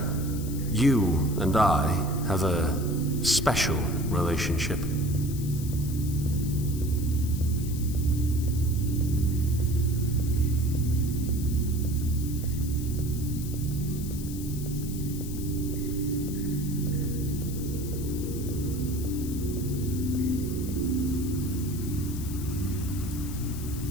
You and I have a special relationship.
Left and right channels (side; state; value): left; noise; hiss, 13 dB below the sound